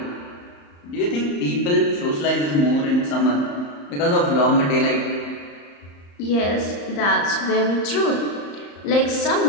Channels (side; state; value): right; late; 35 ms